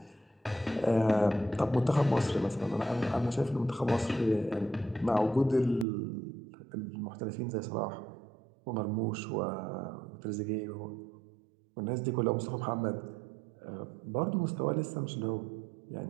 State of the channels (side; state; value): left; drops out; at 5.9 s